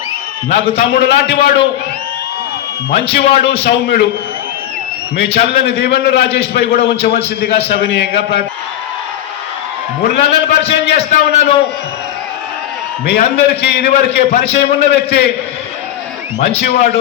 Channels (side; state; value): right; quieter; 12.1 dB